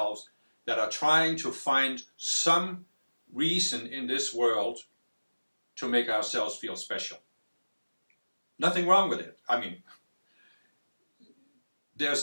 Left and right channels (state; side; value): inverted; both; correlation -1.00